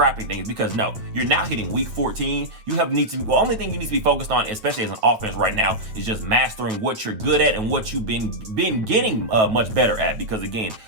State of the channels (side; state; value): left; late; 8.9 ms